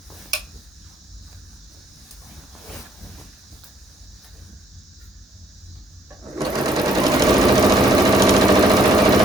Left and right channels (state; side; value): normal; both; correlation 0.66